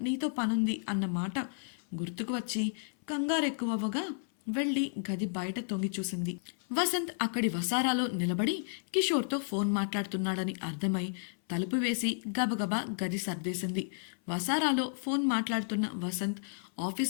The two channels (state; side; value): silent; right; 56 dB below the other